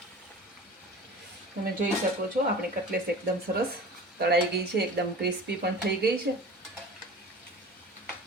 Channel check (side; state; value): both; normal; correlation 0.38